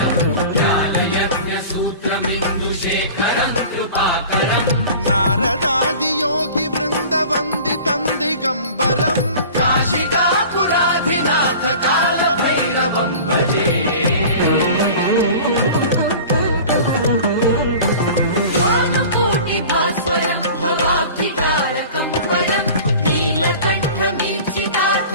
व्यालयज्ञसूत्रमिन्दुशेखरं कृपाकरं नारदादियोगि वृन्दवन्दितं दिगम्बरं काशिकापुराधिनाथ कालभैरवं भजे भास्वरं भवाब्धिकारकं परं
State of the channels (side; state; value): both; inverted; correlation -0.40